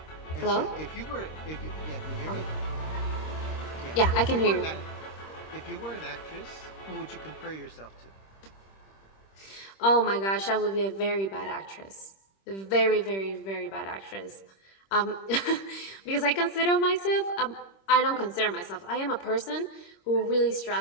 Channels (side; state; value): right; late; 26 ms